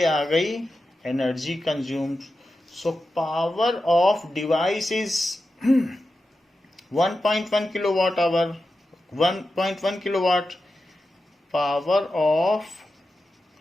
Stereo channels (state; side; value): normal; both; correlation 0.91